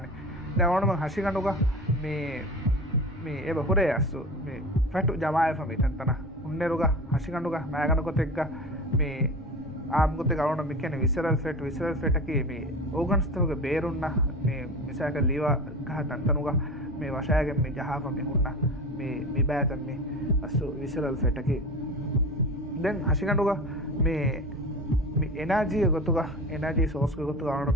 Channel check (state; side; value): normal; both; correlation 0.31